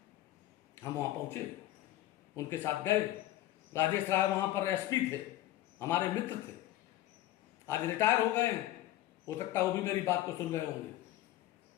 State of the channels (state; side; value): quieter; right; 14.8 dB